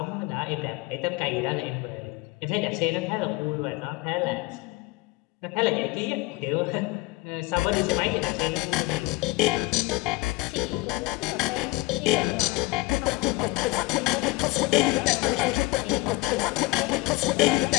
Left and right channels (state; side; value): quieter; right; 21.1 dB